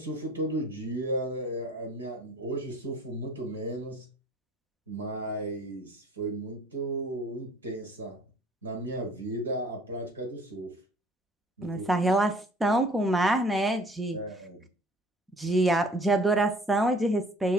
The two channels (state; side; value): normal; both; correlation 0.52